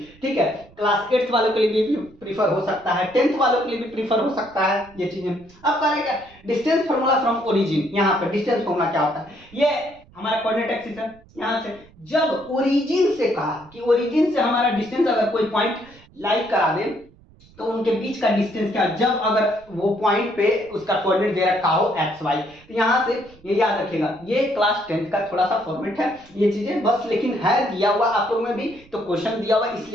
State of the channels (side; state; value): right; noise; rumble, 26 dB below the sound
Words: ठीक है। क्लास 8th वालों के लिए भी प्रीफर हो सकता है, 10th वालों के लिए भी प्रीफर हो सकता है ये चीजें। अब करेगा डिस्टेंस फॉर्मूला फ्रॉम ओरिजिन। यहाँ पर डिस्टेंस फॉर्मूला क्या होता है? ये हमारा कोऑर्डिनेट एक्सिस है। यहाँ से जब ओरिजिन से कहा कि ओरिजिन से हमारा डिस्टेंस अगर कोई पॉइंट लाई करा दे तो उनके बीच का डिस्टेंस क्या, जब अगर वो पॉइंट पे उसका कोऑर्डिनेट दे रखा हो एक्स वाई, तो यहाँ से ये याद रखिएगा। ये क्लास 10th का थोड़ा सा फॉर्मेट है ये चीजें बस, लेकिन है दिया हुआ आप लोग में भी, तो क्वेश्चन दिया हुआ